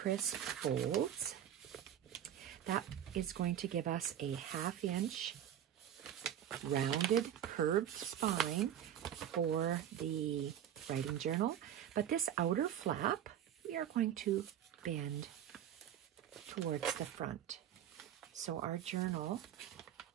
folds. That is going to give us a 1/2 inch rounded curved spine for the writing journal, but this outer flap we are going to bend towards the front. So our journal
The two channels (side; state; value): left; quieter; 10.3 dB